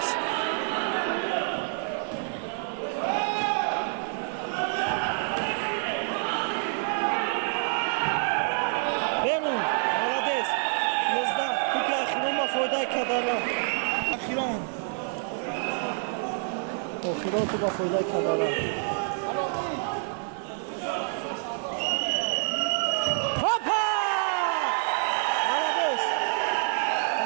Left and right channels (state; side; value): silent; left; 60 dB below the other